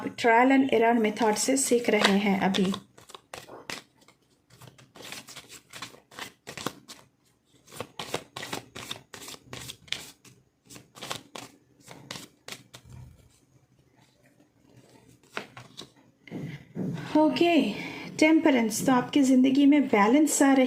ट्रायल एंड एरर मेथड से सीख रहे हैं अभी। Okay, temperance. तो आपकी ज़िंदगी में बैलेंस आ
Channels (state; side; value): identical; both; correlation 1.00